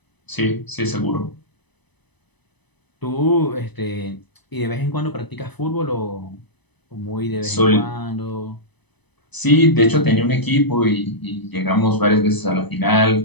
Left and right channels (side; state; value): right; late; 0.99 ms